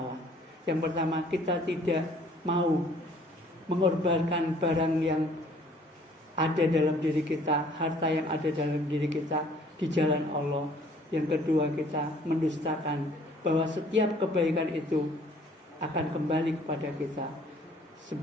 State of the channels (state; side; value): normal; both; correlation 0.57